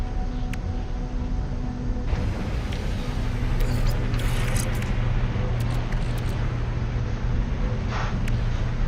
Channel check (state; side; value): identical; both; correlation 1.00